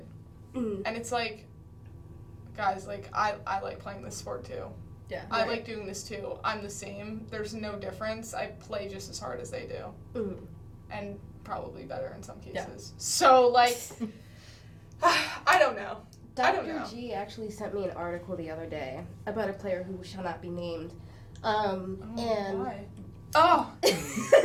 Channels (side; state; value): both; identical; correlation 1.00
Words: And it's like, guys, like, I like playing this sport too. Yeah. I like doing this too. I'm the same. There's no difference. I play just as hard as they do. And probably better in some cases. Yeah. So, like, I don't know. Dr. G actually sent me an article the other day about a player who shall not be named. Why?